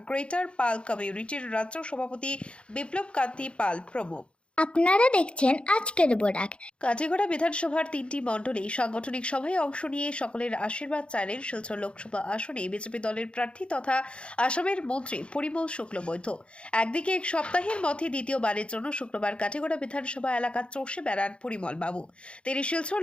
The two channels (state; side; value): late; right; 0.057 ms